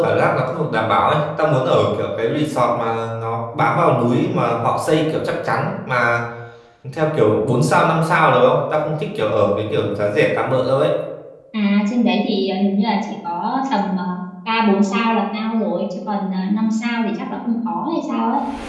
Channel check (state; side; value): identical; both; correlation 1.00